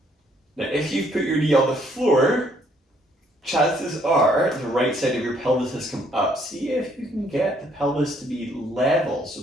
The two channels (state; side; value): normal; both; correlation 0.66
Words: Now if you've put your knee on the floor, chances are the right side of your pelvis has come up. See if you can get the pelvis to be level, so